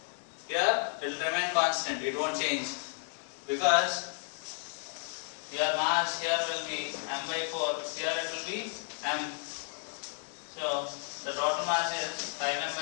Here it will remain constant, it won't change, because your mass here will be m by 4, here it will be m. So the total mass is 5m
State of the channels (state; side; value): silent; right; 56 dB below the other